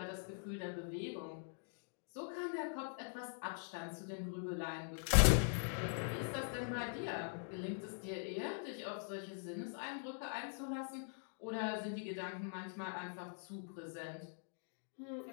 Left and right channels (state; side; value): silent; right; digital silence